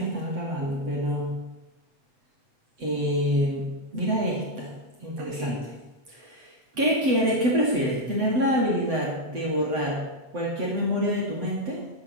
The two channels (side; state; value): left; late; 7.9 ms